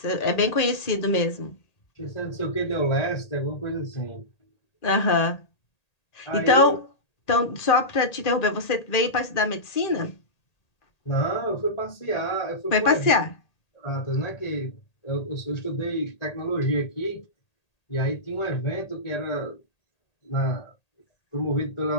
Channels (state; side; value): late; right; 1.8 ms